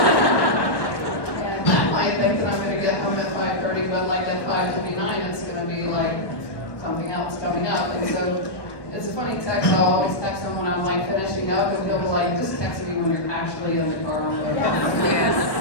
And I might think that I'm going to get home at 5:30, but like at 5:29, it's going to be like something else coming up. And so it's a funny text. I'll always text him when I'm like finishing up, and he'll be like, just text me when you're actually in the car on the way. Yes.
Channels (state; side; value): late; right; 1.1 ms